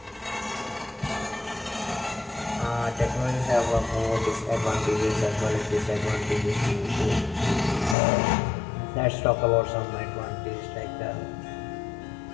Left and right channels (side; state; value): right; drops out; at 8.0 s